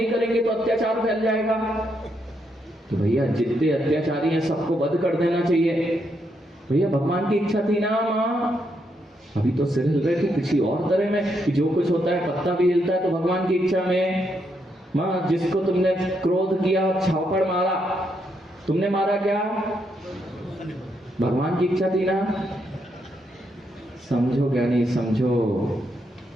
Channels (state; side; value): normal; both; correlation 0.78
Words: करेंगे तो अत्याचार फैल जाएगा। तो भैया जितने अत्याचारी हैं सबको वध कर देना चाहिए। भैया भगवान की इच्छा थी ना माँ। अभी तो सिर हिल रहे थे किसी और तरह में कि जो कुछ होता है पत्ता भी हिलता है तो भगवान की इच्छा में। माँ जिसको तुमने क्रोध किया छापड़ मारा, तुमने मारा क्या? भगवान की इच्छा थी ना। समझो क्या नहीं समझो,